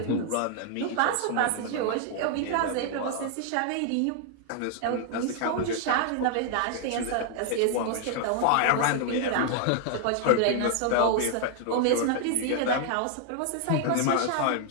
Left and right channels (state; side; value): different; both; correlation 0.00